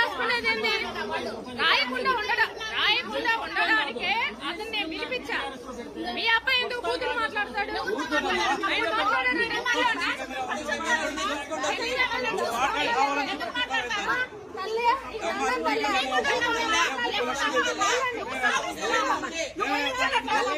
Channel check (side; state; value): both; identical; correlation 1.00